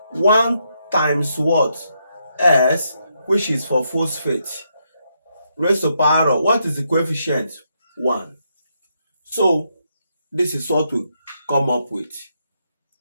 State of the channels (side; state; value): both; inverted; correlation -0.79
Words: 1 times what? S, which is for phosphate. Raised to power of, what is the coefficient? 1. So, this is what we come up with.